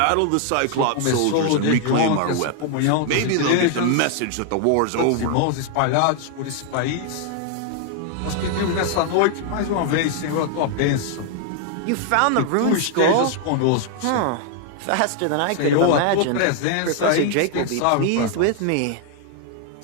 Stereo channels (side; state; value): both; different; correlation 0.00